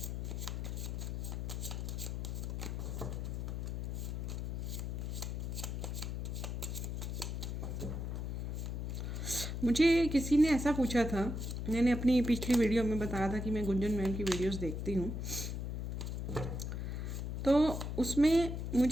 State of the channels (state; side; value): noise; left; hum, 3 dB below the sound